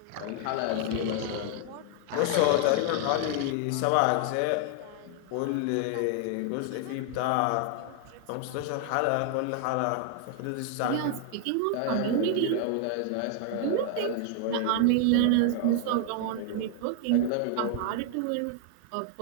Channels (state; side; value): different; both; correlation 0.00